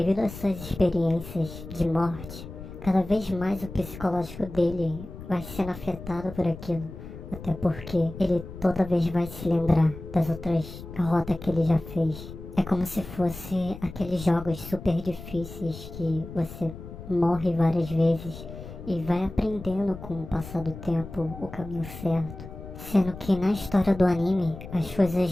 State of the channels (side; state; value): left; noise; rumble, 13 dB below the sound